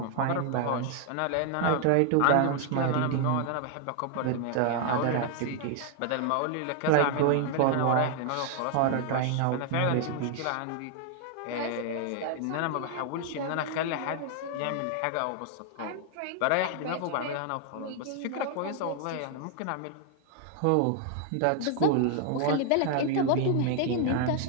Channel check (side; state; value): both; different; correlation 0.00